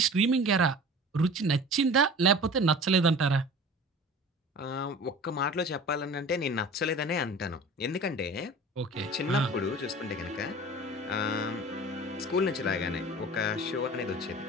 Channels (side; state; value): both; normal; correlation 0.40